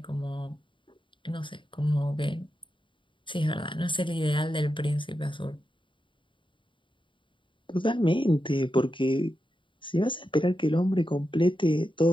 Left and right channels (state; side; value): late; right; 0.24 ms